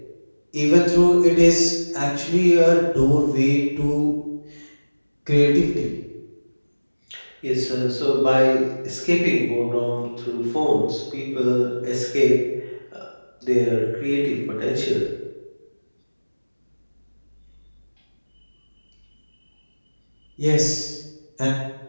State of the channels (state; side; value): inverted; both; correlation -1.00